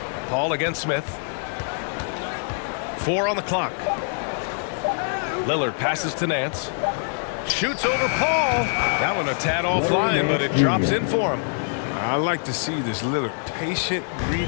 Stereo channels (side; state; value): right; silent; 62 dB below the other